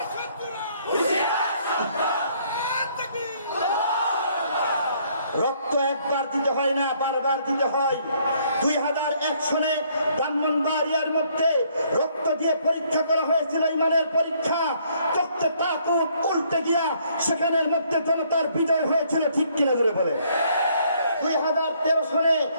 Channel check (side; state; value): both; inverted; correlation -0.66